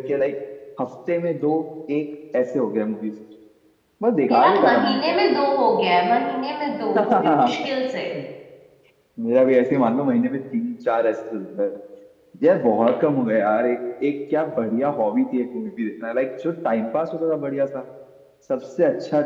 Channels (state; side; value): identical; both; correlation 1.00